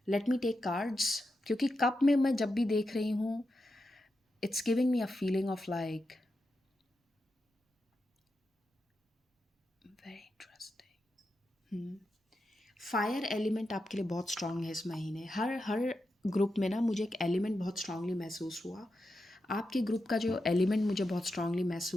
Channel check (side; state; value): both; normal; correlation 0.88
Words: Let me take cards, क्योंकि कप में मैं जब भी देख रही हूँ, it's giving me a feeling of like very interesting. Fire element आपके लिए बहुत स्ट्रांग है इस महीने। हर हर ग्रुप में ना मुझे एक एलिमेंट बहुत स्ट्रांगली महसूस हुआ। आपके ग्रुप का जो एलिमेंट मुझे बहुत स्ट्रांगली